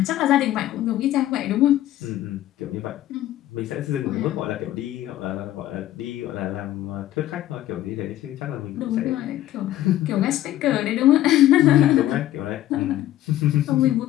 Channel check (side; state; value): right; quieter; 13.6 dB